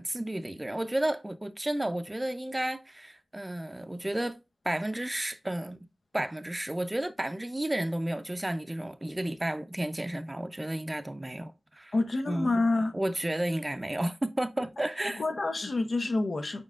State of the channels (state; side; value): normal; both; correlation 0.97